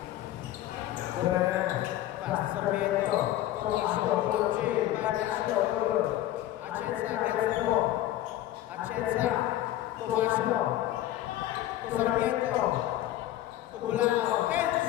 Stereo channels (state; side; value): quieter; right; 13.8 dB